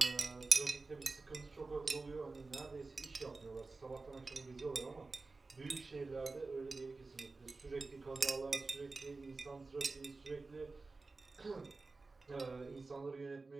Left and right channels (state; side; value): quieter; left; 3.7 dB